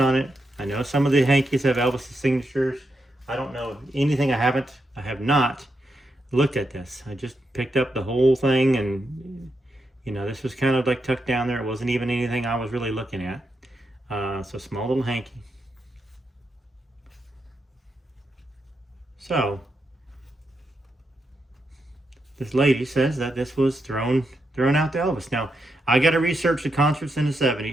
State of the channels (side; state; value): both; normal; correlation 0.84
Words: it. I know some of the hankies have Elvis's signatures. I don't know anything. I have not looked at this. I just picked up the whole thing, and you know, this was kind of like tucked down there. It wasn't even anything I was really looking at. So small little hanky. So this lady says that this was thrown out to Elvis. Now, I got to research the concerts in the